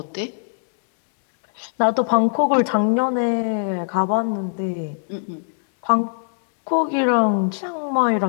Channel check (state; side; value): silent; right; 65 dB below the other